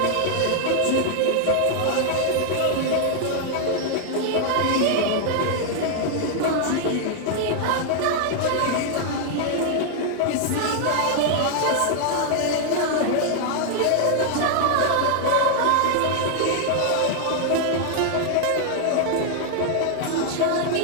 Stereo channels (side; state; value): both; different; correlation 0.00